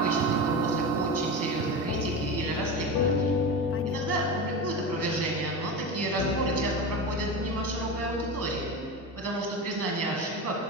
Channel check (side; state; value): both; normal; correlation 0.23